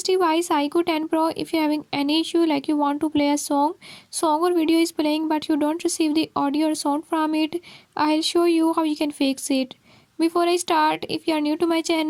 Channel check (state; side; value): identical; both; correlation 1.00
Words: device IQOO 10 Pro, if you're having any issue like you want to play a song or video is playing but you don't receive the audio or sound from it, I'll show you how you can fix it. Before I start, if you are new to my